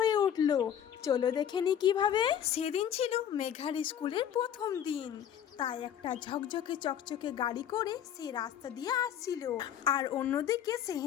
উঠলো। চলো দেখে নি কিভাবে। সেদিন ছিল মেঘার স্কুলের প্রথম দিন, তাই একটা ঝকঝকে চকচকে গাড়ি করে সে রাস্তা দিয়ে আসছিল, আর অন্যদিকে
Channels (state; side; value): quieter; right; 9.5 dB